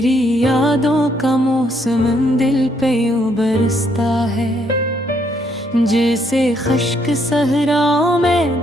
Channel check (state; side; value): normal; both; correlation 0.72